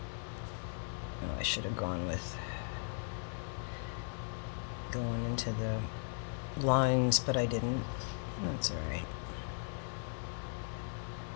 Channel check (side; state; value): right; silent; 53 dB below the other